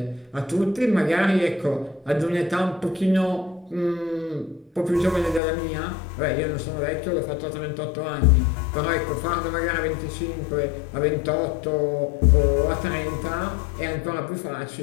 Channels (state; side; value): drops out; right; at 5.4 s